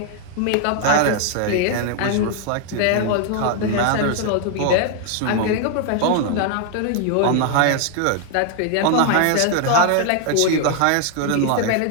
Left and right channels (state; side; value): different; both; correlation 0.00